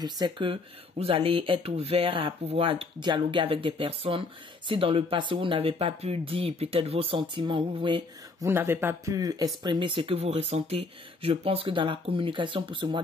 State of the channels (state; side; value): quieter; right; 3.6 dB